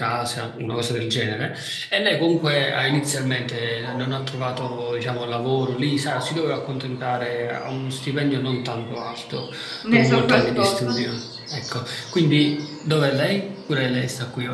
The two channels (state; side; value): identical; both; correlation 1.00